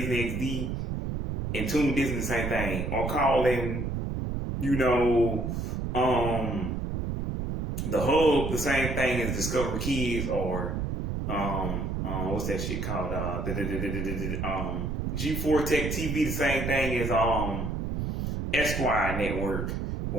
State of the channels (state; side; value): noise; right; rumble, 2 dB below the sound